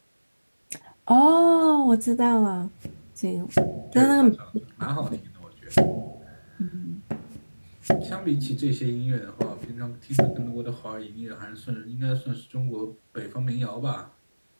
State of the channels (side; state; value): both; inverted; correlation -1.00